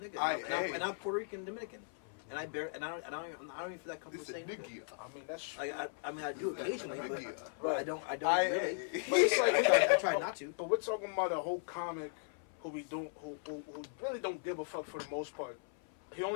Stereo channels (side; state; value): right; silent; 53 dB below the other